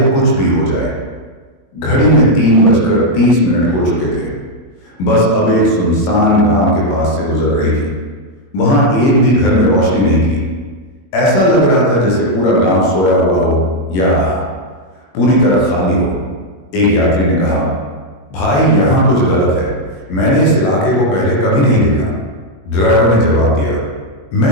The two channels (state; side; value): late; right; 21 ms